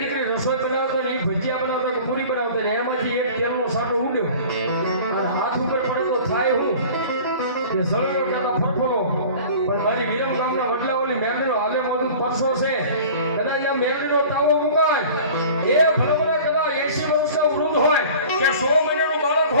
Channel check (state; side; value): inverted; both; correlation -0.42